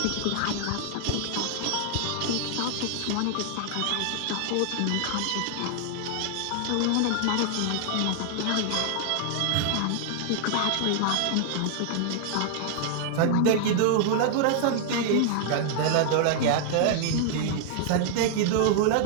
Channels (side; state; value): both; different; correlation 0.00